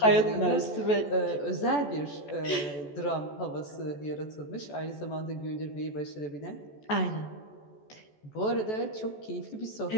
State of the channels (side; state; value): right; late; 14 ms